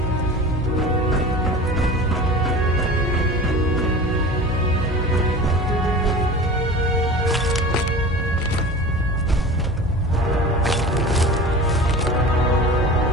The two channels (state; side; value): normal; both; correlation 0.36